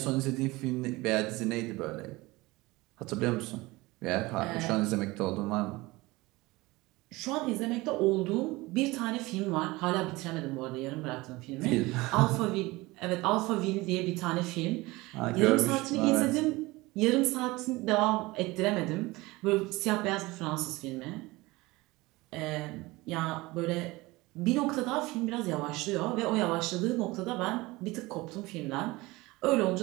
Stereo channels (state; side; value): quieter; left; 21.3 dB